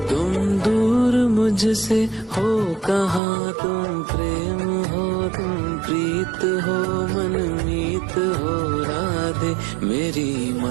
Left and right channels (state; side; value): drops out; left; at 3.2 s